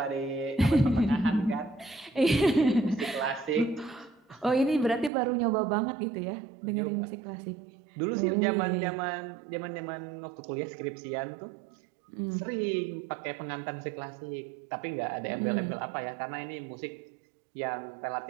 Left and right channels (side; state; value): left; drops out; at 5.1 s